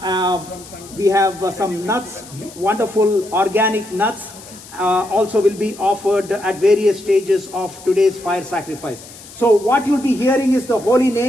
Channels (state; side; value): noise; left; hiss, 18 dB below the sound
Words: We have some nuts, wonderful organic nuts. Also will be offered at various stages of today's fire sacrifice. So what you'll be hearing is the holy